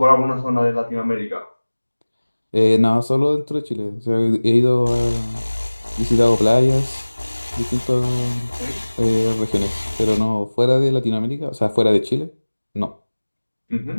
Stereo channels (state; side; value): inverted; both; correlation -1.00